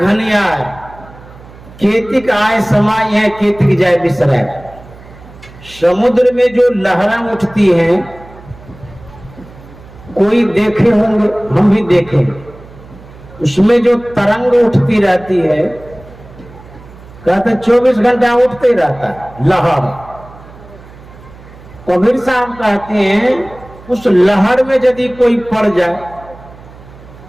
केतिक आय समाय है, केतिक जाए बिसराय। समुद्र में जो लहरें उठती हैं, कोई देखे होंगे, हम भी देखें, उसमें जो तरंग उठती रहती है, कहते 24 घंटा उठते ही रहता है लहर। कबीर साहब कहते हैं, उस लहर में यदि कोई पड़ जाए,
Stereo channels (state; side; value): noise; right; hum, 20 dB below the sound